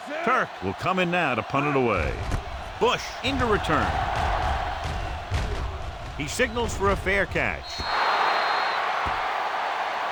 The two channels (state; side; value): identical; both; correlation 1.00